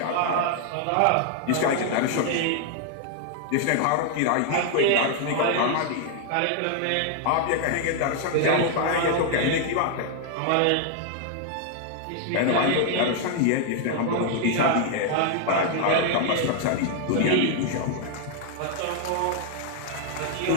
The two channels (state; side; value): different; both; correlation 0.00